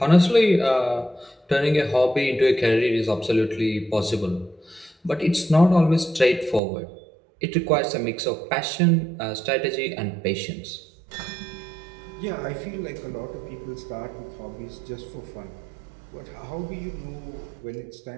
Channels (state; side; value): drops out; left; at 6.6 s